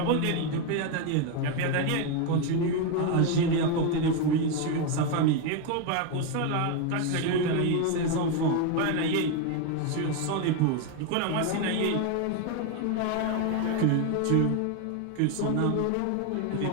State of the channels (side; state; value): both; different; correlation 0.02